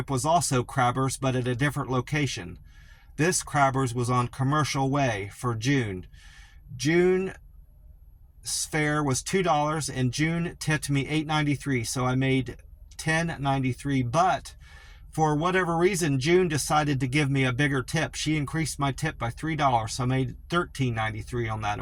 was also Crabber's, but at a different location. This Crabber's was on Commercial Way for June. June's fare was $2, and June tipped me $8.93, so I made $10.93. But for whatever reason, June decided to give me a bigger tip. She increased my tip by $3, so I made $13.93 on that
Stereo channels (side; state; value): both; identical; correlation 1.00